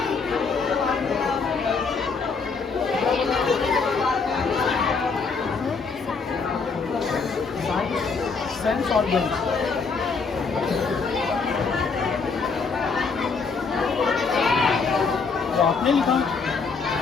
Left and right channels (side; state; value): right; quieter; 4.9 dB